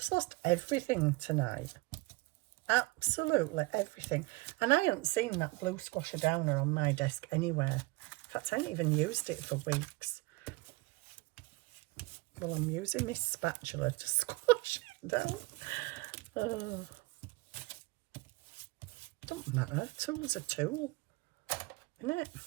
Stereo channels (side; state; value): left; quieter; 23.1 dB